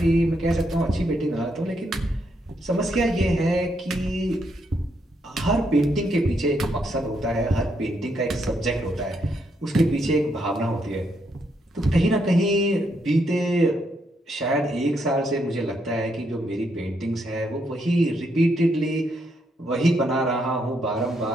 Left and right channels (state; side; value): normal; both; correlation 0.77